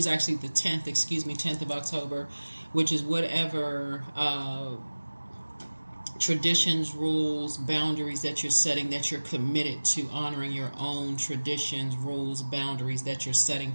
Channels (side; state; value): both; inverted; correlation -1.00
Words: actually the 10th, 10th of October, which is whatever traditions, rules, boundaries that you're setting, that you're committed to honoring your own traditions, rules, boundaries that you're setting